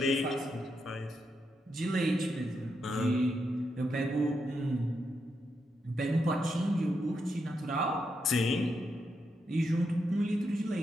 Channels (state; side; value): normal; both; correlation 0.83